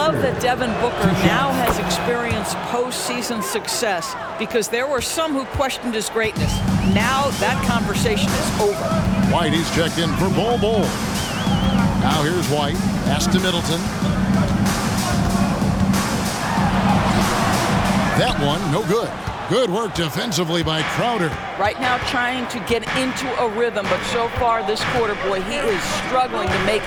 that Devin Booker now has experienced postseason success because there were some who questioned his greatness. Now that conversation is over. White, he's checked in for Bol. Now here's White. Pass to Middleton. That one, no good. Good work defensively by Crowder. Right now trying to get into a rhythm, but so far this quarter, boy, he is struggling to make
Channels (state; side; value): identical; both; correlation 1.00